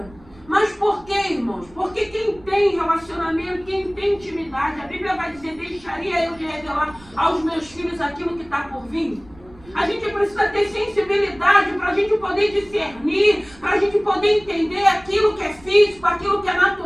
Mas por quê, irmãos? Porque quem tem relacionamento, quem tem intimidade, a Bíblia vai dizer, deixaria eu de revelar aos meus filhos aquilo que está por vir? A gente precisa ter sensibilidade para a gente poder discernir, para a gente poder entender aquilo que é físico, aquilo que é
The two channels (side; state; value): right; noise; rumble, 24 dB below the sound